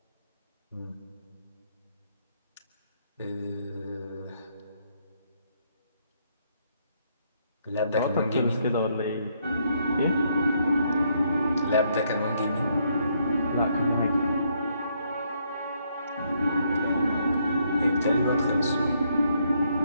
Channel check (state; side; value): inverted; both; correlation -0.73